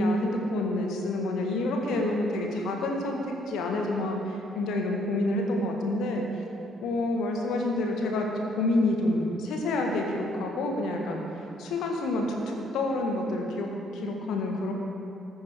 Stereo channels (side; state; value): both; normal; correlation 0.65